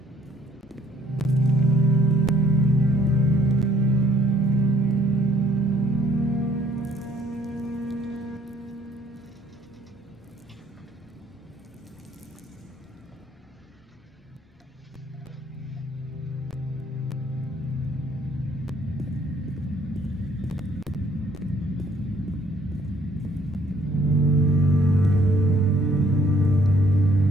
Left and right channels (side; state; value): both; normal; correlation 0.63